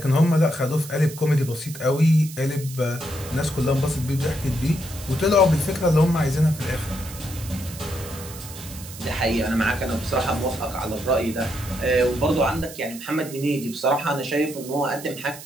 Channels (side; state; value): right; noise; hiss, 14 dB below the sound